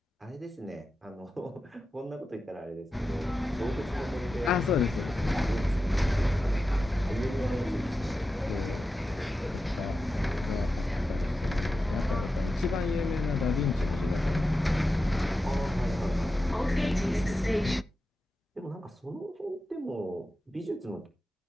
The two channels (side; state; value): both; normal; correlation 0.92